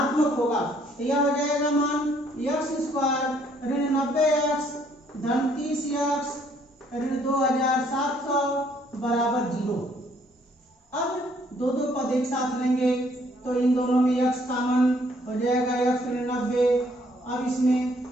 होगा। तो यह हो जाएगा मान यक्ष स्क्वायर ऋण 90 यक्ष धन 30 यक्ष ऋण 2700 बराबर 0। अब दो पद एक साथ लेंगे तो इन दोनों में यक्ष कॉमन हो जाएगा यक्ष ऋण 90। अब इसमें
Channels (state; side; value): normal; both; correlation 0.65